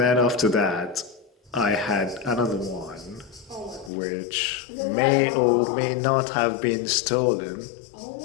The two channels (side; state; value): right; drops out; at 3.9 s